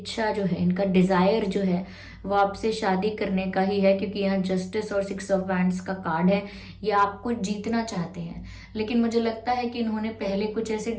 जो है, इनका डिजायर जो है वो आपसे शादी करने का ही है, क्योंकि यहाँ जस्टिस और 6 ऑफ वैंड्स का कार्ड है। ये आपको जीतना चाहते हैं, लेकिन मुझे लगता है कि इन्होंने पहले कुछ ऐसे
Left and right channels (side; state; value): both; identical; correlation 1.00